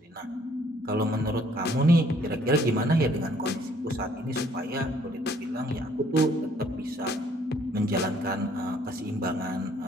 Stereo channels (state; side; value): normal; both; correlation 0.62